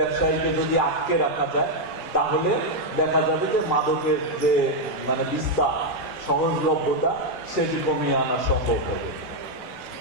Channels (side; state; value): both; normal; correlation 0.00